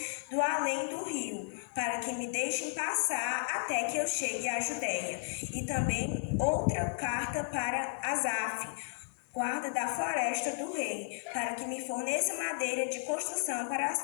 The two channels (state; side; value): silent; right; digital silence